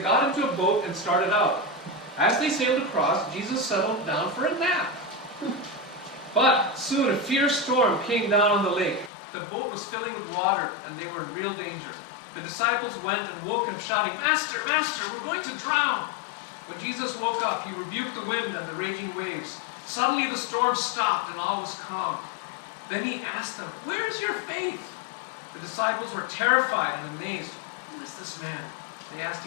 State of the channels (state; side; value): drops out; right; at 9.1 s